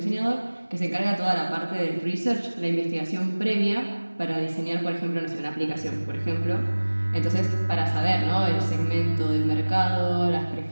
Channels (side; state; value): both; inverted; correlation -1.00